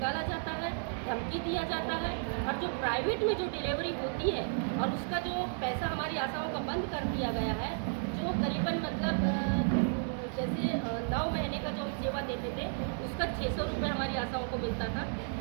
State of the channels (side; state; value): left; silent; digital silence